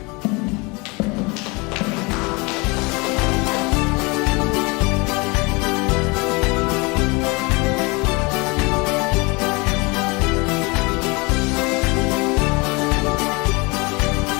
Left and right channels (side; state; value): right; quieter; 27.1 dB